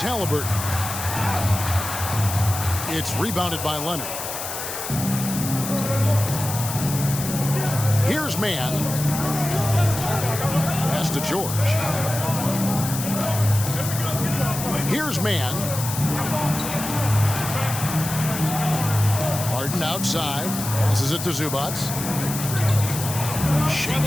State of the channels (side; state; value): left; noise; hiss, 6 dB below the sound